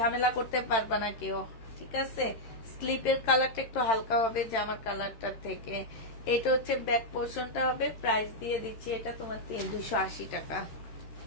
করতে পারবা না কেউ, ঠিক আছে। স্লিপের কালারটা একটু হালকা হবে জামার কালারটার থেকে। এটা হচ্ছে ব্যাক পোর্শনটা হবে। প্রাইস দিয়ে দিচ্ছি এটা তোমার 280 টাকা।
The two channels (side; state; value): right; late; 13 ms